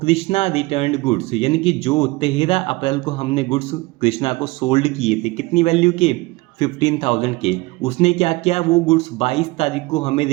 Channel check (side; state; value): left; quieter; 22.3 dB